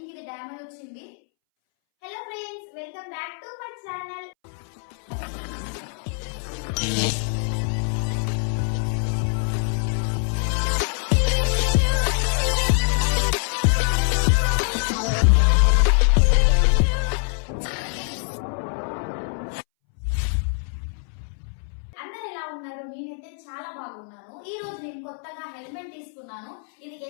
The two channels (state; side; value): silent; right; 62 dB below the other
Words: ఇది డ్యామేజ్ వచ్చింది. Hello friends, welcome back to my channel. నేనైతే చాలా బాగున్నాను. ఈ రోజు నేను కొత్తగా హెల్మెట్ తీసుకున్నాను. ఇది